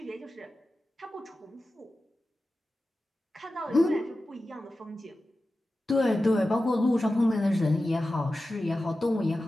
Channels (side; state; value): both; normal; correlation 0.94